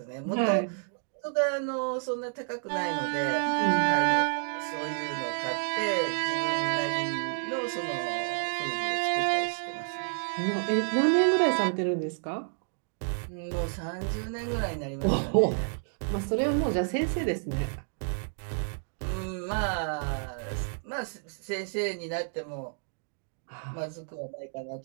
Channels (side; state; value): left; silent; digital silence